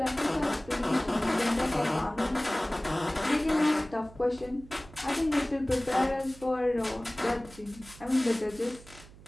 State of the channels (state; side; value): noise; right; hum, 20 dB below the sound